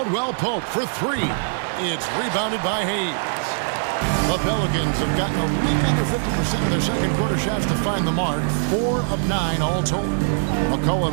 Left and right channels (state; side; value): silent; left; digital silence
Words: Pope for 3. It's rebounded by Hayes. The Pelicans have gotten a little under 50% of their second quarter shots to find the mark. 4 of 9 all told.